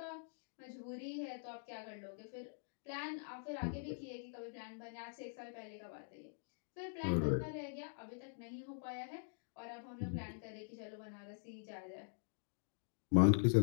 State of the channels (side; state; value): right; silent; digital silence